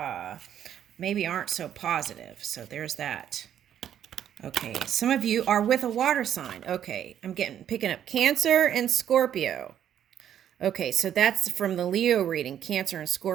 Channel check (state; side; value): quieter; left; 10.0 dB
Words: maybe aren't so positive. So there's that. Okay, some of you are with a water sign. Okay, I'm picking up Cancer and Scorpio. Okay, so that's from the Leo reading. Cancer and